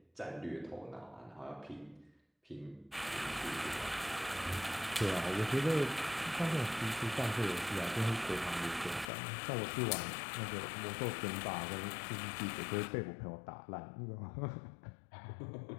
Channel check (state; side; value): drops out; right; at 9.1 s